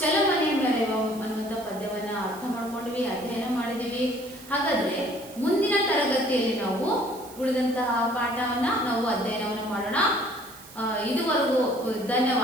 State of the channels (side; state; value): right; noise; hiss, 19 dB below the sound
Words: ಮೆರೆವ ಅನ್ನುವಂತಹ ಪದ್ಯವನ್ನ ಅರ್ಥ ಮಾಡ್ಕೊಂಡ್ವಿ, ಅಧ್ಯಯನ ಮಾಡಿದೀವಿ. ಹಾಗಾದ್ರೆ ಮುಂದಿನ ತರಗತಿಯಲ್ಲಿ ನಾವು ಉಳಿದಂತಹ ಪಾಠವನ್ನ ನಾವು ಅಧ್ಯಯನವನ್ನು ಮಾಡೋಣ. ಇದುವರೆಗೂ